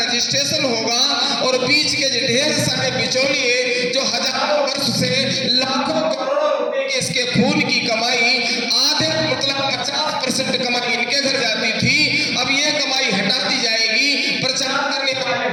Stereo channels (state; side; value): identical; both; correlation 1.00